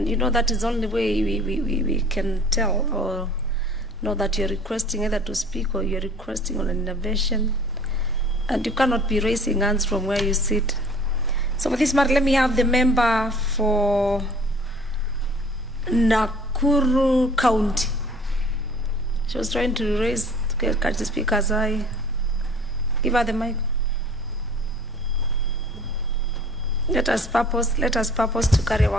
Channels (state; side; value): normal; both; correlation 0.50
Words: you know that is the only way we can tell or know that you're requesting either to speak or you're requesting on an intervention. And you cannot be raising hands from where you sit. So for this matter, let me have the member for Nakuru County. She was trying to catch the speaker's eye. Give her the mic. Let us purpose to carry